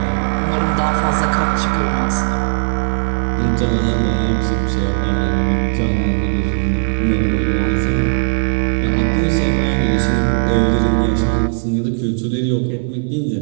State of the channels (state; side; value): silent; left; 64 dB below the other